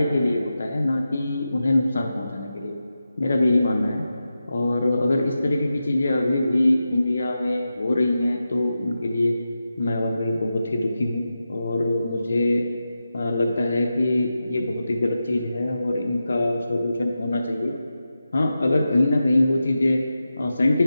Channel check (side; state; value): both; inverted; correlation -0.91